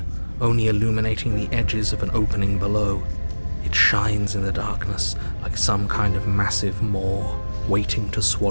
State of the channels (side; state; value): both; inverted; correlation -1.00